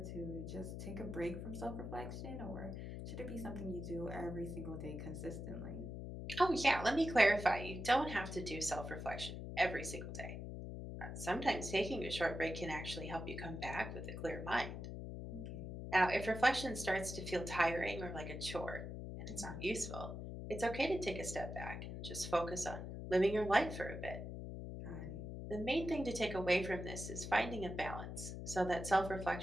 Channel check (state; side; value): noise; left; hum, 7 dB below the sound